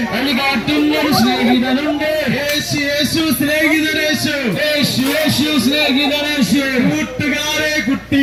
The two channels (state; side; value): identical; both; correlation 1.00